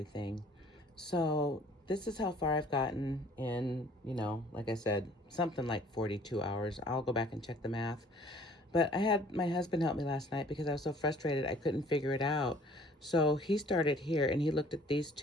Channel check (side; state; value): both; normal; correlation 0.54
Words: So this is how far I've gotten in, you know, like I said, something like 42 hours. I'll go back and check the math. But I had my husband help me last night because I was so frustrated I couldn't figure it out. So he started here and he looked at these